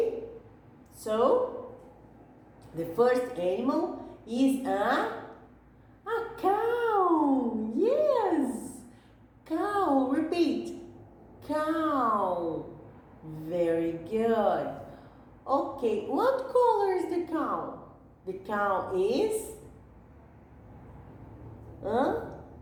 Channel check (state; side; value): identical; both; correlation 1.00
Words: So, the first animal is a cow! Yes! Cow, repeat. Cow. Very good. Okay, what color is the cow? The cow is